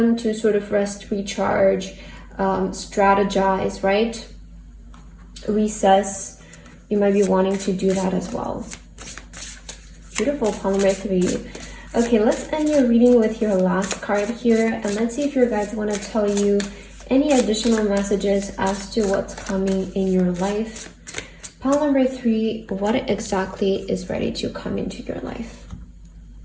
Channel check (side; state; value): both; identical; correlation 1.00